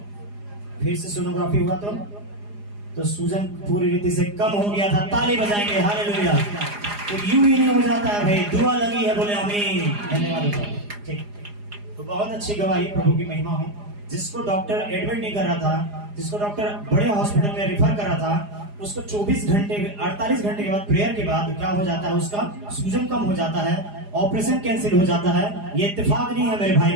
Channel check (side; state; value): left; late; 4.9 ms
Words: फिर से सोनोग्राफी हुआ तो सूजन पूरी रीति से कम हो गया था। ताली बजाएंगे हालेलुया। तो यूं ही नहीं हो जाता है भाई दुआ लगी है बोले आमीन धन्यवाद। ठीक तो बहुत अच्छी गवाही प्रभु की महिमा हो। जिसको डॉक्टर एडमिट नहीं कर रहा था जिसको डॉक्टर बड़े हॉस्पिटल में रिफर कर रहा था उसको 48 घंटे के बाद प्रेयर के बाद क्या हो जाता है उसका सूजन कम हो जाता है ऑपरेशन कैंसिल हो जाता है। ये इत्तेफाक नहीं है मेरे भाई